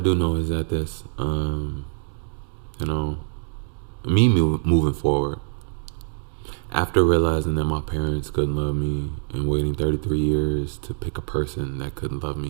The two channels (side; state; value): left; silent; digital silence